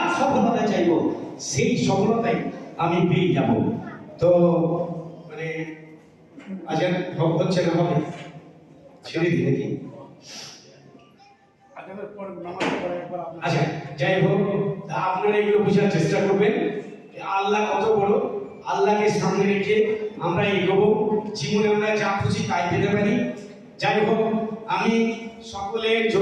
সফলতা চাইব সেই সফলতাই আমি পেয়ে যাব। তো মানে আজান হচ্ছে না, হবে ছেড়ে দিই নাকি? আচ্ছা, যাই হোক, তা আপনারা এগুলো বোঝার চেষ্টা করবেন যে আল্লাহ কত বড়। আল্লাহকে সামনে রেখে আমরা এগোবো, জীবনে আমরা যা খুশি তাই পেতে পারি। যাই হোক, আমি সকলের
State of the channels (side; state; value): both; identical; correlation 1.00